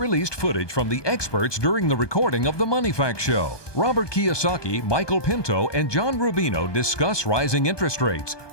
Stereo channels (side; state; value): right; late; 1.2 ms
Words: footage from the experts during the recording of the Money Facts Show. Robert Kiyosaki, Michael Pento, and John Rubino discuss rising interest rates,